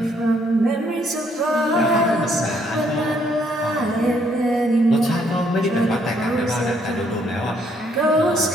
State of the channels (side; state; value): both; normal; correlation 0.69